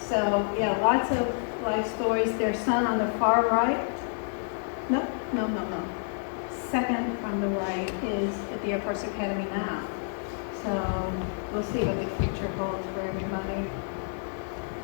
So yeah, lots of life stories. Their son on the far right, no. Second from the right is at the Air Force Academy now. So we'll see what the future holds for everybody.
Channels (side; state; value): right; silent; 59 dB below the other